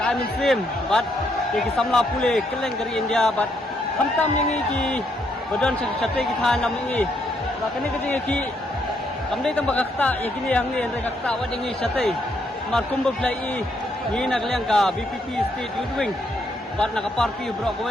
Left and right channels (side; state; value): both; normal; correlation 0.74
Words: muslim bat ki samla pule keleng dari India bat hamtam yang ki badan sate ki than nam ni ba kini ka jing ki kamdai tambah kakta ya kini yang ni andre kakta wa ding sate mar kumba plai ni nak liang ka BPP state youth wing bat nak party bro